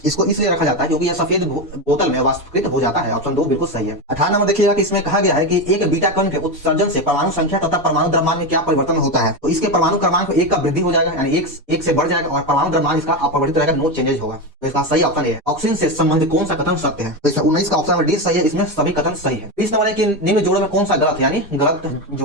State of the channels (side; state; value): both; normal; correlation 0.14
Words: इसको इसलिए रखा जाता है क्योंकि यह सफेद बोतल में वाष्पीकृत हो जाता है। ऑप्शन 2 बिल्कुल सही है। 18 नंबर देखिएगा कि इसमें कहा गया है कि एक बीटा कण के उत्सर्जन से परमाणु संख्या तथा परमाणु द्रव्यमान में क्या परिवर्तन होता है? तो इसके परमाणु क्रमांक 1 का वृद्धि हो जाएगा, यानी 1 से बढ़ जाएगा और परमाणु द्रव्यमान इसका अपरिवर्तित रहेगा, नो चेंजेस होगा। तो इसका सही ऑप्शन ए। ऑक्सीजन से संबंधित कौन सा कथन सत्य है? तो इसमें 19 का ऑप्शन नंबर डी सही है। इसमें सभी कथन सही है। 20 नंबर है कि निम्न जोड़ों में कौन सा गलत है, यानी गलत